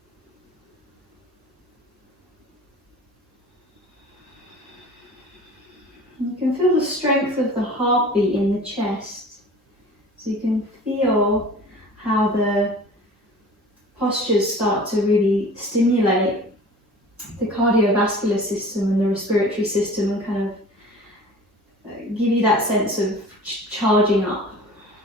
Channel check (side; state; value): both; normal; correlation 0.43